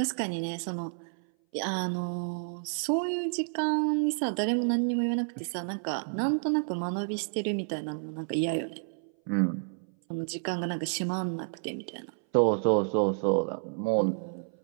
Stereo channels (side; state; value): left; silent; 58 dB below the other